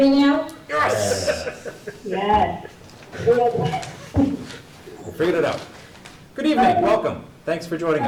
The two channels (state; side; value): identical; both; correlation 1.00